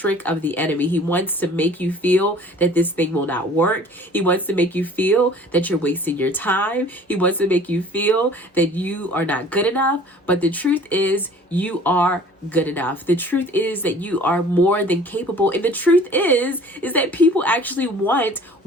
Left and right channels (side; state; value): both; normal; correlation 0.49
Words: of the enemy. He wants to make you feel that this thing will not work. He wants to make you feel that you're wasting your time. He wants to make you feel that you are not good enough. But the truth is, you are good enough. The truth is that you are more than capable. And the truth is that people actually want